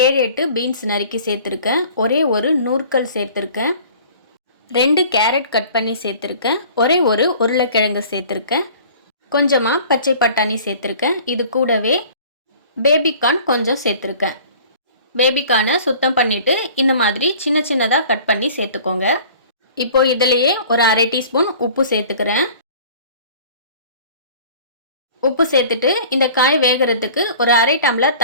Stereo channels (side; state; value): both; inverted; correlation -0.47